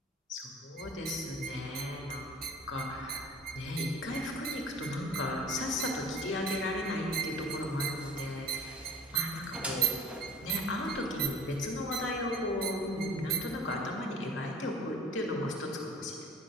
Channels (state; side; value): normal; both; correlation 0.44